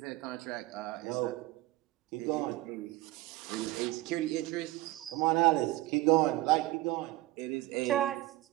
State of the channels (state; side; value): quieter; left; 18.1 dB